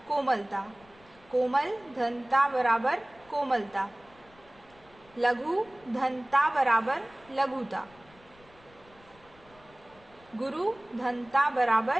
कोमलता। कोमल धनता बराबर कोमलता। लघु धनता बराबर लघुता। गुरु धनता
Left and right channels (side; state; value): left; noise; rumble, 27 dB below the sound